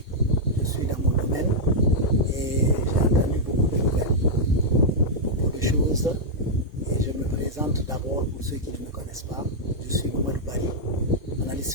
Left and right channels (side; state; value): both; normal; correlation -0.05